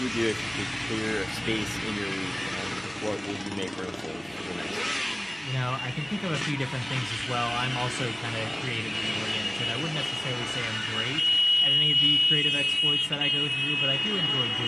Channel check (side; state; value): right; noise; hum, 26 dB below the sound